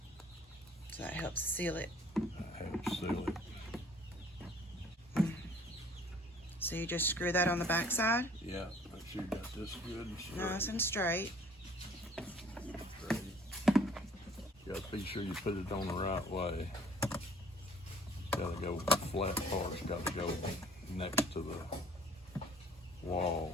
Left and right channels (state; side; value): normal; both; correlation 0.55